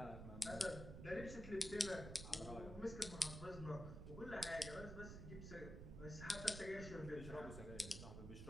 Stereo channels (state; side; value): noise; right; rumble, 8 dB below the sound